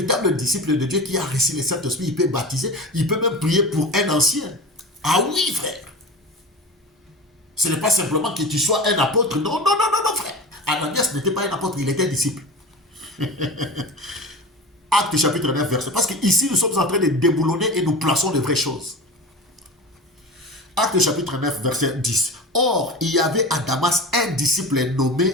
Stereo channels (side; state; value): both; normal; correlation 0.31